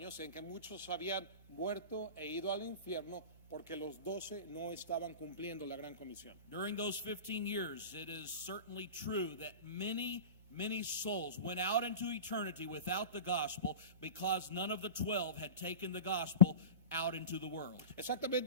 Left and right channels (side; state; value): both; inverted; correlation -0.31